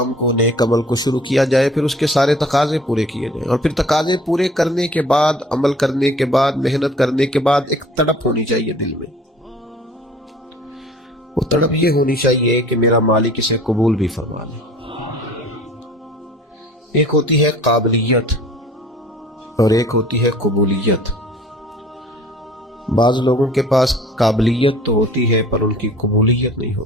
کو، نیک عمل کو شروع کیا جائے، پھر اس کے سارے تقاضے پورے کیے جائیں، اور پھر تقاضے پورے کرنے کے بعد، عمل کرنے کے بعد، محنت کرنے کے بعد ایک تڑپ ہونی چاہیے دل میں۔ وہ تڑپ یہ ہونی چاہیے کہ میرا مالک اسے قبول بھی فرما لے۔ ایک ہوتی ہے قابلیت اور ایک ہوتی ہے قبولیت۔ بعض لوگوں کے پاس قابلیت تو ہوتی ہے پر ان کی قبولیت نہیں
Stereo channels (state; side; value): normal; both; correlation 0.49